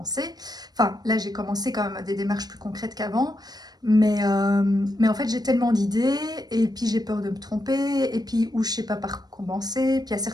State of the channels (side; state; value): left; late; 0.19 ms